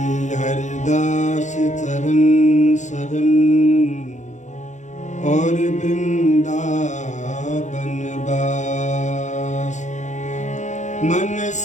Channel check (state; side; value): late; right; 0.35 ms